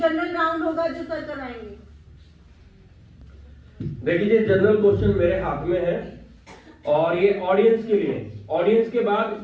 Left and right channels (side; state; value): both; identical; correlation 1.00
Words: राउंड होगा जो सर करवाएंगे। देखिए जनरल क्वेश्चन मेरे हाथ में है और ये ऑडियंस के लिए। ऑडियंस के